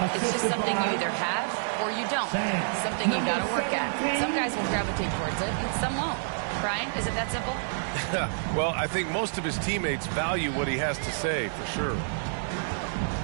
It's just something you either have or you don't. Something you got to work at. Some guys will gravitate towards it, and some won't. Brian, is it that simple? Well, I think most of his teammates value what he has to say, for sure.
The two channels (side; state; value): left; silent; digital silence